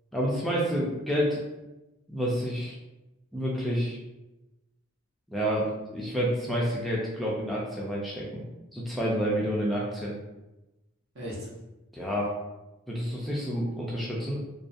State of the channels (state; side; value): normal; both; correlation 0.60